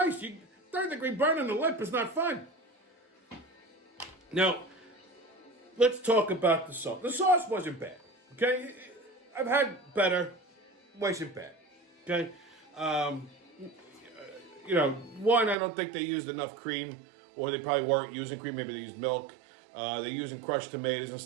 third-degree burn on the lip is not fun. Now, let's talk about the sauce. The sauce wasn't bad, okay? I've had better. Wasn't bad, okay? One, I don't think they used enough cream, or they probably weren't using cream. Maybe they used milk. They're using crushed tomatoes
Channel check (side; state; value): left; drops out; at 15.6 s